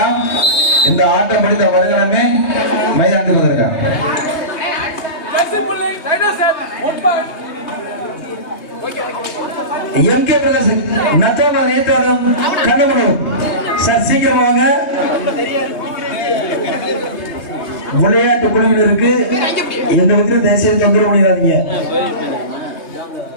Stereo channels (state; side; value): late; right; 3.2 ms